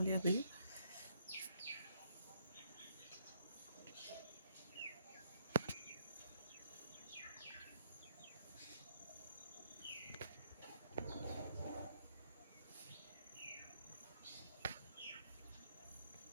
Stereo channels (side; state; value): both; inverted; correlation -0.71